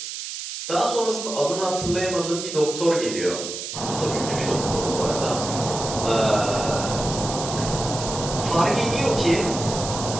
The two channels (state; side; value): noise; right; hiss, 7 dB below the sound